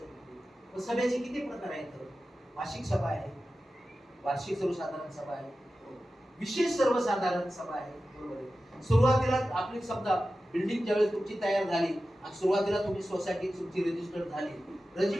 सभेचे किती प्रकार आहेत? वार्षिक सभा आहे, वार्षिक सर्वसाधारण सभा आहे, विशेष सर्वसाधारण सभा आहे, बरोबर आहे. सुरुवातीला आपली समजा बिल्डिंग ज्यावेळेस तुमची तयार झाली आणि सुरुवातीला तुम्ही सोसायटी तुमची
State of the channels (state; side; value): normal; both; correlation 0.94